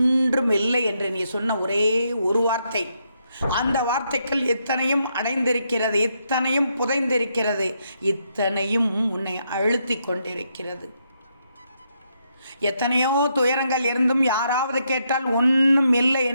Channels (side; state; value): both; inverted; correlation -0.78